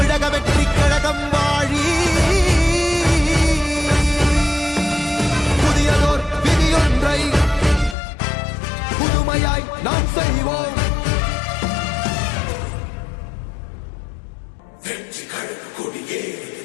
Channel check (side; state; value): right; drops out; at 8.0 s